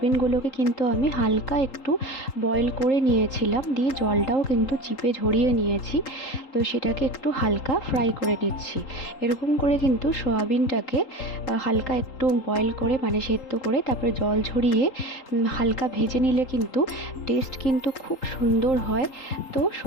কিন্তু আমি হালকা একটু বয়েল করে নিয়েছিলাম, দিয়ে জলটাও কিন্তু চিপে ঝরিয়ে নিয়েছি। তো সেটাকে একটু হালকা ফ্রাই করে নিচ্ছি। এরকম করে কিন্তু সোয়াবিনটাকে হালকা একটু বয়েল করে মানে সেদ্ধ করে তারপরে জল ঝরিয়ে হালকা ভেজে নিলে কিন্তু টেস্ট কিন্তু খুব সুন্দর হয়। তো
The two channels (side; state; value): right; late; 3.8 ms